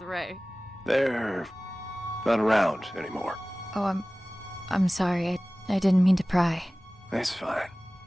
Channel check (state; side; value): normal; both; correlation 0.98